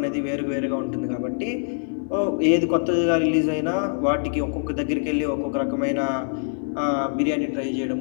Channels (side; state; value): right; silent; 63 dB below the other